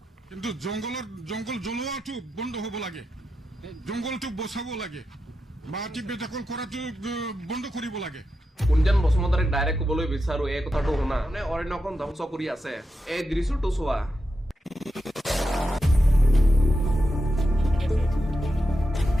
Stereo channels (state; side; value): normal; both; correlation 0.88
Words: কিন্তু জংঘল জ্বলোৱাটো বন্ধ হ'ব লাগে, জংঘলটো বচাব লাগে, মাটি বেদখল কৰাটো বন্ধ কৰিব লাগে। কুঞ্জন বসুমতাৰীক ডাইৰেক্ট ক'বলৈ বিচাৰো, এই কথাটো শুনা। মানে অৰণ্যখন ধ্বংস কৰি আছে, এই দৃশ্যটো চোৱা।